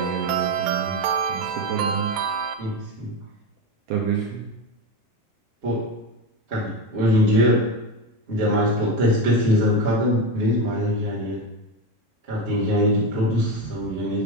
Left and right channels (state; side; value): normal; both; correlation 0.17